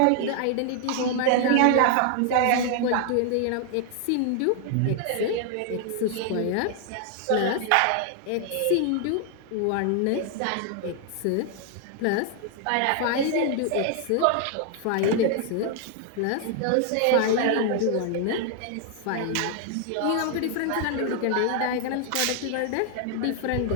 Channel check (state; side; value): different; both; correlation 0.00